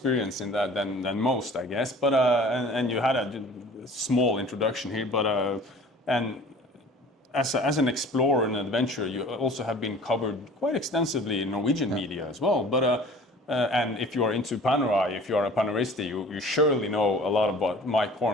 in that than most, I guess. But and you had a small introduction here, but and as an explorer and adventurer, you also have been covered quite extensively in Norwegian media as well. But and if you are into Panerai, if you are a Paneirista, you surely know a lot about Mike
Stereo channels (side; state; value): both; normal; correlation 0.47